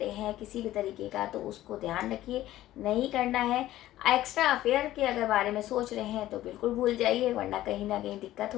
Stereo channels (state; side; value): quieter; right; 14.6 dB